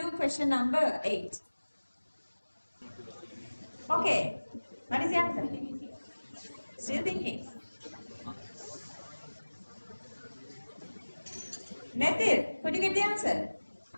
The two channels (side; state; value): both; inverted; correlation -1.00